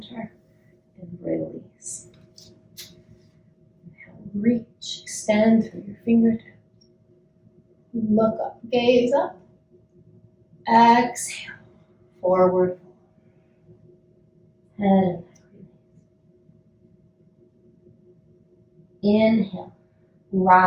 and release. Inhale, reach, extend through your fingertips. Look up, gaze up. Exhale, forward fold. And inhale,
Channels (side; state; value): both; identical; correlation 1.00